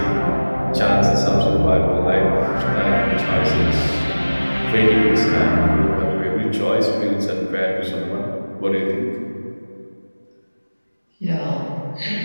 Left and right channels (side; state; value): both; inverted; correlation -1.00